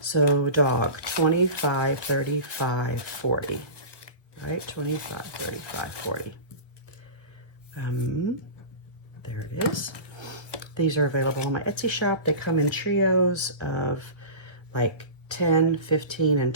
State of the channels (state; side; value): late; right; 1.2 ms